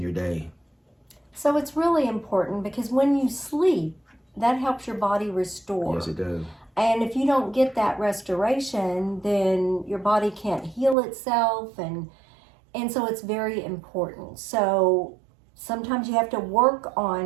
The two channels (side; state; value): left; drops out; at 11.0 s